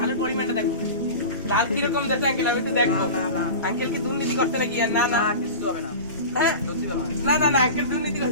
ধানের পরিমাণটা দেখবো, ধান কিরকম দেখে আঙ্কেল, আমি একটু দেখবো। আঙ্কেল কি দুর্নীতি করছে নাকি? আর না না কিছু হবে না। হ্যাঁ না না না আঙ্কেল দুর্নীতি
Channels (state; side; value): inverted; both; correlation -0.32